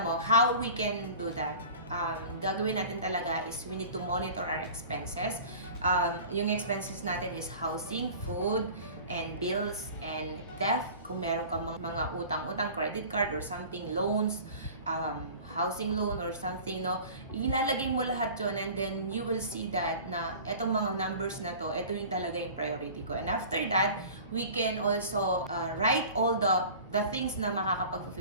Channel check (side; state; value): both; inverted; correlation -0.41